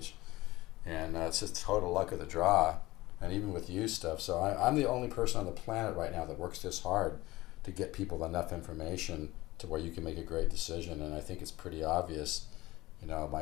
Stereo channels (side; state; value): right; quieter; 18.8 dB